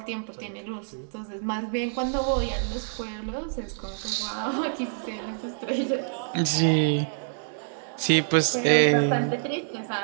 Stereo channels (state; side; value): silent; left; digital silence